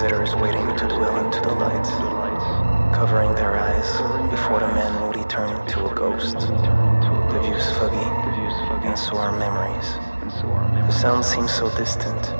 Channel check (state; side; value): inverted; both; correlation -1.00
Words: waiting to dwell into the light, covering their eyes before the man moody turned into a ghost. The view's foggy, and so are memories. The sound seems so distant,